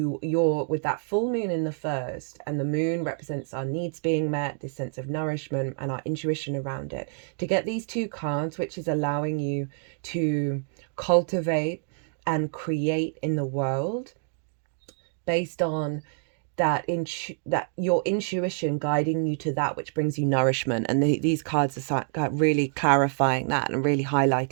with that full moon in the first, and the moon represents our needs being met, this sense of nourishment and our intuition around it. To get these 2 cards, which is allowing you to cultivate and create in the world based on that your intuition guiding you to that which brings you nourishment. And these cards are really clarifying that and really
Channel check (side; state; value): left; silent; 60 dB below the other